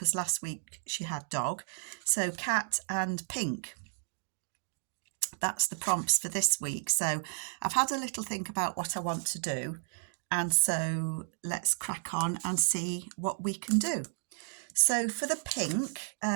last week she had dog. So cat and pink. That's the prompts for this week. So I've had a little think about what I want to do. And so let's crack on and see what we can do. So for the pink,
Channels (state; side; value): silent; left; digital silence